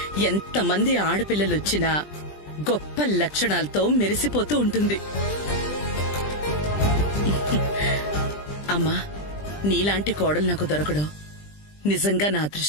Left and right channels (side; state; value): right; late; 20 ms